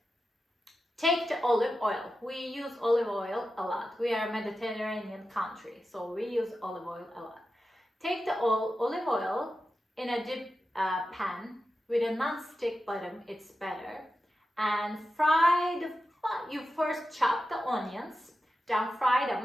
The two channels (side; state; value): both; normal; correlation 0.91